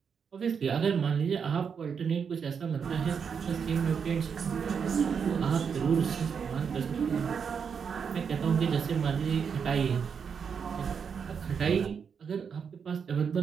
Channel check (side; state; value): left; quieter; 6.6 dB